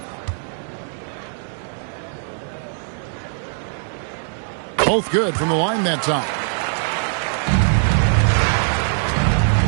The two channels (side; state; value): left; silent; 65 dB below the other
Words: Both good from the line that time.